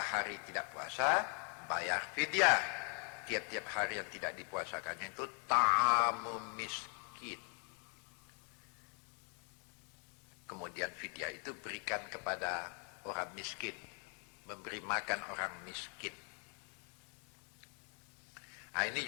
tidak puasa, bayar fidyah. Tiap-tiap hari yang tidak dipuasakannya itu ta'amu miskin. Kemudian fidyah itu berikan kepada orang miskin, memberi makan orang miskin. Nah, ini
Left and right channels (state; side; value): quieter; right; 39.1 dB